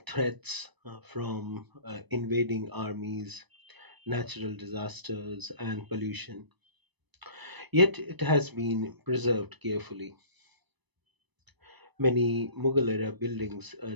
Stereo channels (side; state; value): left; late; 1.0 ms